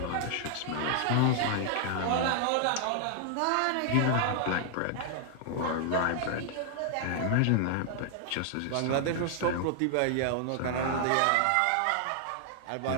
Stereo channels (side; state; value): both; different; correlation 0.00